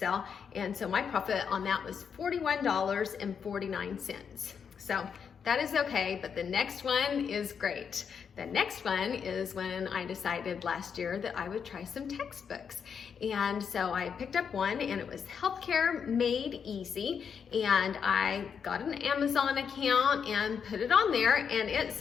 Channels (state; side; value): quieter; right; 6.9 dB